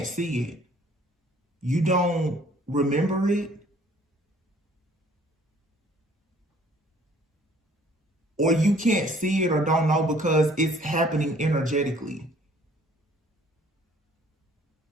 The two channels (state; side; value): normal; both; correlation 0.57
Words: see it. You don't remember it. Or you can't see it or don't know because it's happening energetically.